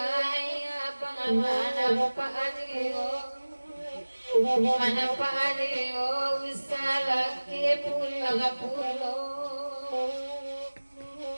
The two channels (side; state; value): both; inverted; correlation -1.00